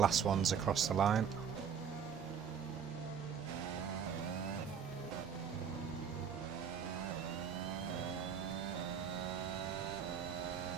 ones across the line.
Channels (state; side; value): quieter; left; 7.3 dB